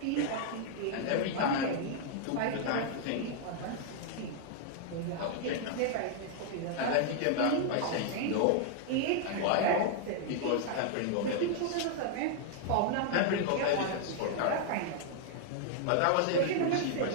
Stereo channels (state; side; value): different; both; correlation 0.00